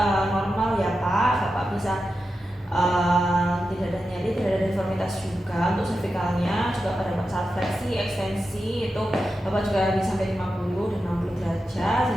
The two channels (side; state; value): both; normal; correlation 0.90